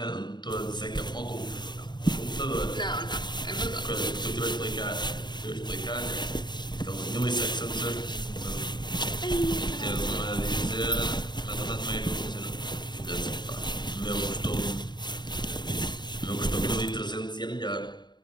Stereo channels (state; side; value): late; right; 0.21 ms